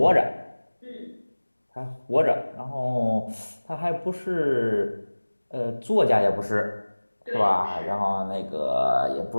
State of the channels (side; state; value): both; inverted; correlation -1.00